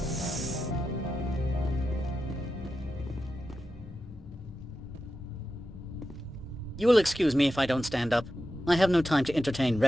You will excuse me if I don't stand up. I have no time to entertain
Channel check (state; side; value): normal; both; correlation 0.90